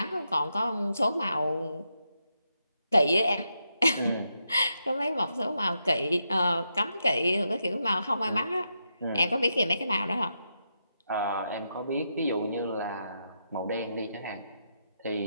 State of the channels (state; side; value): inverted; both; correlation -0.83